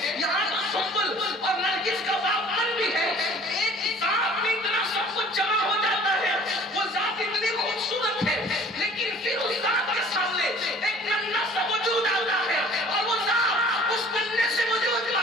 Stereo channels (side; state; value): both; normal; correlation 0.50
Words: یہاں تو سنبل اور نرگس کا باغبان بھی ہے۔ ایک ذات میں اتنا سب کچھ جمع ہو جاتا ہے، وہ ذات اتنی خوبصورت ہے، لیکن پھر اس ذات کے سامنے ایک ننھا سا وجود آتا ہے، اور وہ ذات اس ننھے سے وجود